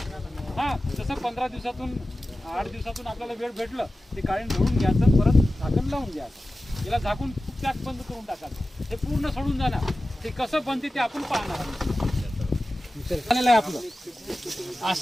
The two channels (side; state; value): both; normal; correlation 0.95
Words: हा तसं 15 दिवसातून 8 दिवसातून आपल्याला वेळ भेटलं ते काढून धुवून घ्यायचं, परत झाकण लावून घ्यायचं. याला झाकून पॅक बंद करून टाकायचं. हे पूर्ण सोडून जाणार. ते कसं बनते ते आपण पाहणार झालेलं आहे आपलं.